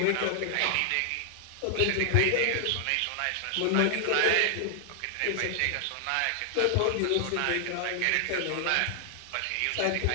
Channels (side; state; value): both; different; correlation 0.00